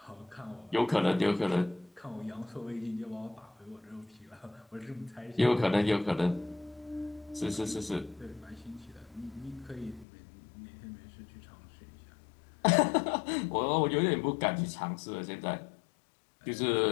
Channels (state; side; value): drops out; right; at 10.1 s